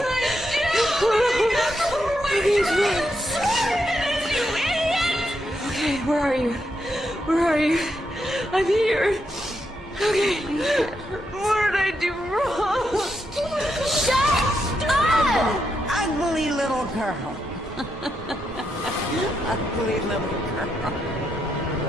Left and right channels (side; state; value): both; normal; correlation 0.82